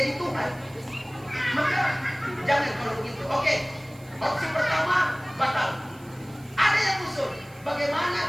Tuhan. Maka jangan kalau begitu. Oke, opsi pertama batal. Ada yang usul,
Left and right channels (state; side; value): noise; right; hiss, 25 dB below the sound